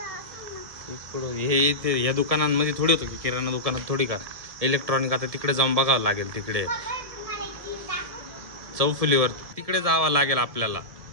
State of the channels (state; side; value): late; left; 1.7 ms